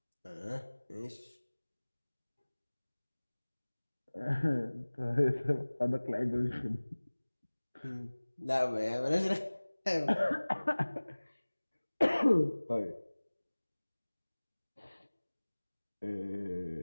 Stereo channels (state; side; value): inverted; both; correlation -1.00